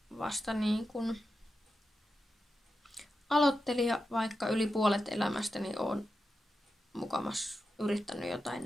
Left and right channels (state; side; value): normal; both; correlation 0.90